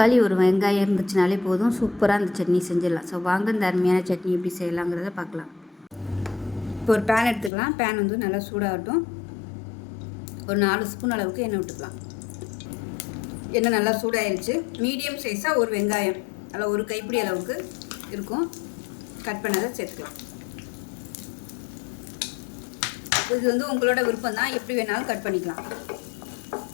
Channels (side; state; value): right; drops out; at 7.5 s